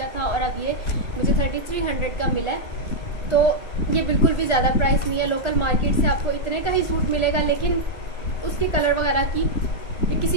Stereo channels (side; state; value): right; late; 1.4 ms